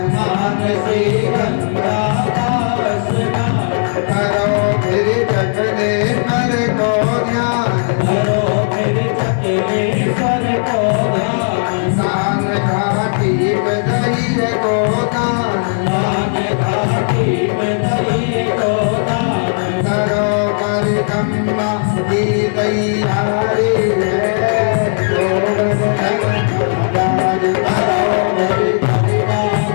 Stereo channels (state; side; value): silent; right; digital silence